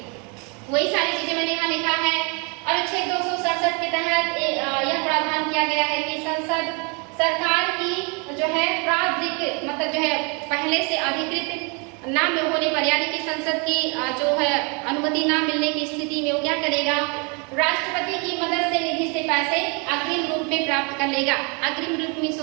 वही सारी चीजें मैंने यहाँ लिखा है। अनुच्छेद 267 के तहत यह प्रावधान किया गया है कि संसद सरकार की जो है प्राधिकृत मतलब जो है पहले से अधिकृत ना होने पर, यानी कि संसद की जो है अनुमति ना मिलने की स्थिति में वो क्या करेगा, राष्ट्रपति की मदद से निधि से पैसे अग्रिम रूप में प्राप्त कर लेगा। अग्रिम रूप में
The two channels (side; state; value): left; quieter; 33.4 dB